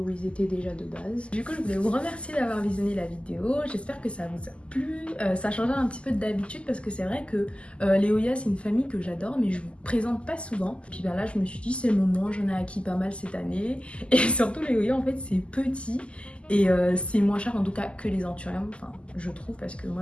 ils étaient déjà de base. Du coup, je voulais vous remercier d'avoir visionné la vidéo, j'espère que ça vous a plu, ça change un petit peu d'habitude parce que c'est vrai que les Oya c'est une famille que j'adore mais je vous présente pas souvent. Puis ben là je me suis dit c'est le moment, j'en ai acquis pas mal cette année et surtout les Oya en fait c'est petit. Et c'est moins cher en tout cas que les anthuriums, enfin je trouve, parce que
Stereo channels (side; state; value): right; late; 0.054 ms